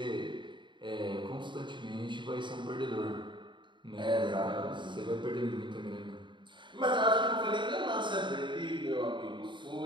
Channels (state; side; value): late; left; 0.23 ms